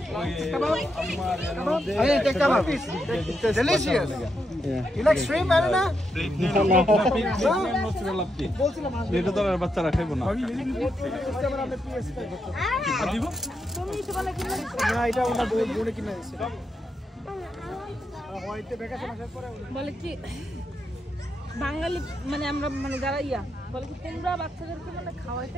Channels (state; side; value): normal; both; correlation 0.82